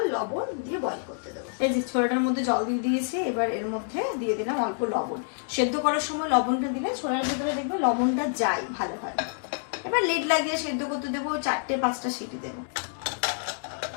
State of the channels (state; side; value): silent; right; digital silence